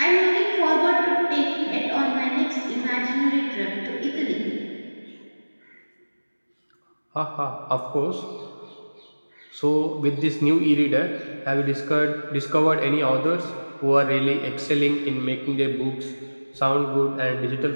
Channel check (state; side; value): inverted; both; correlation -1.00